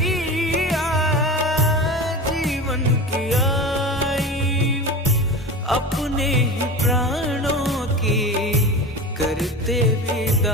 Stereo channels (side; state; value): both; normal; correlation 0.29